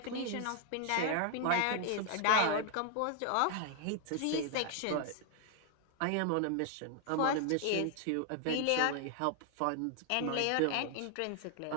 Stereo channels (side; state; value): both; different; correlation 0.00